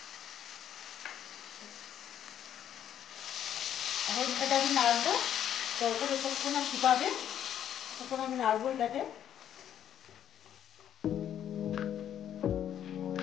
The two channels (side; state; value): right; quieter; 10.2 dB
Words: এখন এটাকে আমি নাড়বো, তখন যতক্ষণ শুকাবে তখন আমি নাড়বো এটাকে।